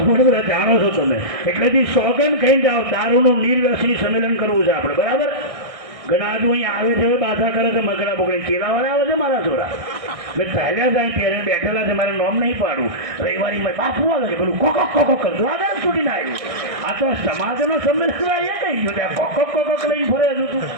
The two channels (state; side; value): late; left; 1.6 ms